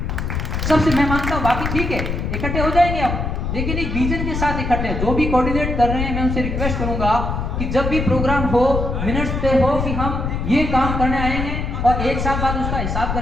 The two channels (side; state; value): left; noise; rumble, 2 dB below the sound